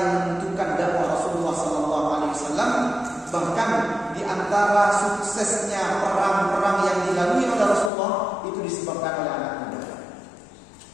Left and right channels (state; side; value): drops out; right; at 7.9 s